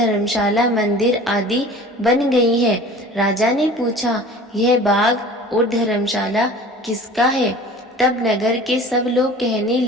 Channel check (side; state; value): both; normal; correlation 0.43